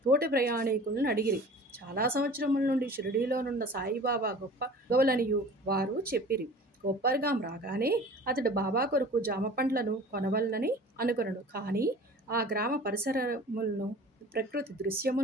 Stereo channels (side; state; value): both; normal; correlation 0.43